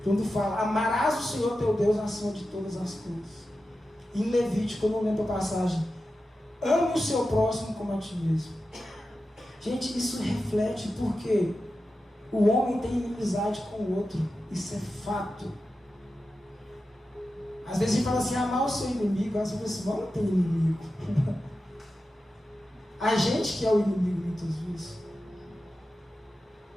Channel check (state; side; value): normal; both; correlation 0.92